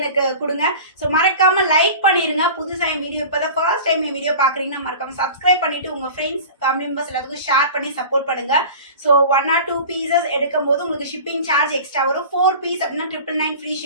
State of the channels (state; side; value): inverted; both; correlation -0.37